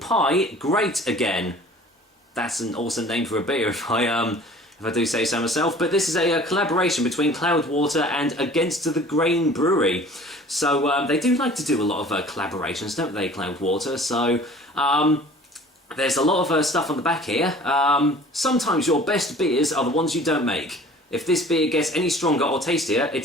Great Again. That's an awesome name for a beer if I do say so myself, but this is a collaboration between Cloudwater and Against the Grain Brewery. So they do like to do a lot of collaborations, don't they, Cloudwater? So there's a lot of stuff on the back here. Sometimes your best beers are the ones you don't make. If this beer gets any stronger or tastier,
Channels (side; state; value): both; normal; correlation 0.47